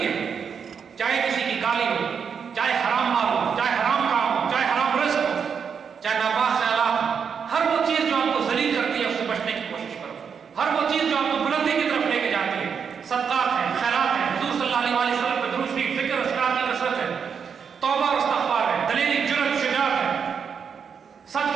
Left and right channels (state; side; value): quieter; left; 6.7 dB